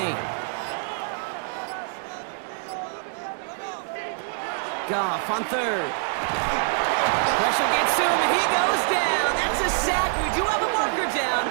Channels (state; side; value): silent; left; digital silence